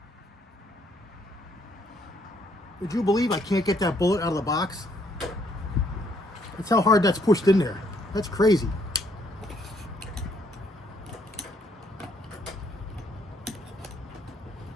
Would you believe I can't get that bullet out of the box? That's how hard that's pushed in there. That's crazy.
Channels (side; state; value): both; normal; correlation 0.69